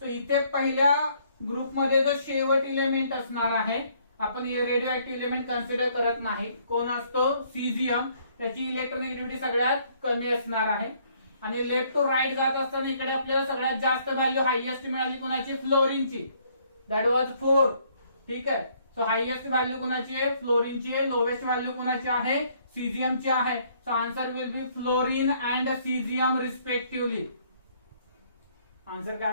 So इथे पहिल्या ग्रुपमध्ये जो शेवट इलेमेंट असणार आहे, आपण रेडिओ ऍक्टिव्ह इलेमेंट कन्सिडर करत नाही, कोण असतो सीझियम, त्याची इलेक्ट्रोनेगेटिव्हिटी सगळ्यात कमी असणार आहे. आणि लेफ्ट टू राईट जात असताना इकडे आपल्याला सगळ्यात जास्त व्हॅल्यू हायएस्ट मिळाली कोणाची, फ्लोरीनची, दॅट वॉज 4. ठीक आहे. सो हायएस्ट व्हॅल्यू कोणाची आहे, फ्लोरीनची आहे. लोवेस्ट व्हॅल्यू कोणाची आहे, सीझियमची आहे. So answer will be fluorine and caesium respectively. Answer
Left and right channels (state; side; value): inverted; both; correlation -0.65